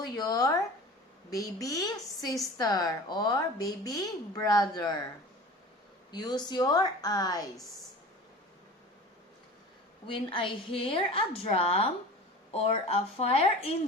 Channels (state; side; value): normal; both; correlation 0.38